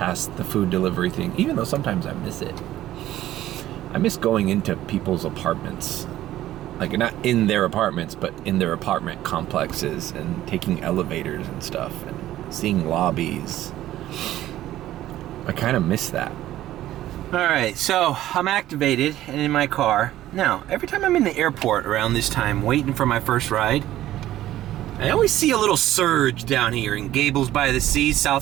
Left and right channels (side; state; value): left; quieter; 13.9 dB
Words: the food delivery thing, even though sometimes I miss it. I miss going into people's apartments. Like, not in their apartments, but in their apartment complexes, and taking elevators and stuff, and seeing lobbies. I kind of miss that. Alright, so I'm activated and in my car. Now, every time I'm in the airport around this time waiting for my first ride, I always see a little surge down here in Gables by the Sea,